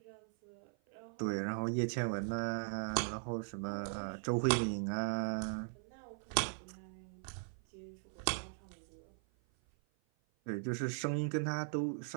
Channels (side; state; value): left; silent; 52 dB below the other